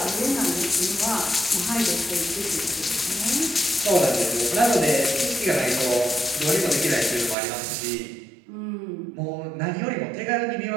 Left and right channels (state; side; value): drops out; left; at 7.4 s